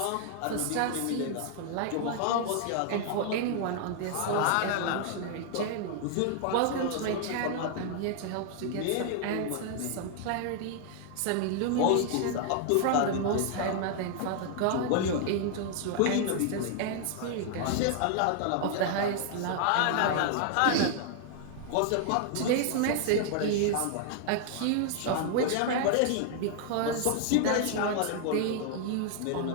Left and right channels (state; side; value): different; both; correlation 0.00